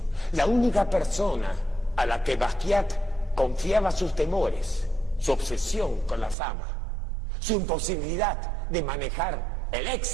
la única persona a la que Basquiat confiaba sus temores, su obsesión con la fama, su imposibilidad de manejar el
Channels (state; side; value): drops out; left; at 6.4 s